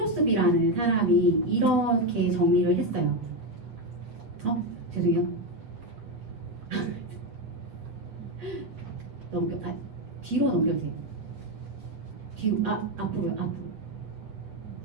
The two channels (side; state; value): left; late; 8.0 ms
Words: 사람이 이렇게 정리를 했어요. 죄송해요. 뒤로 넘겨주세요. 뒤로, 앞으로요, 앞으로.